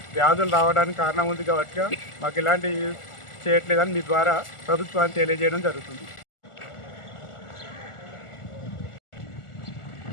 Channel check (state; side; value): late; right; 1.4 ms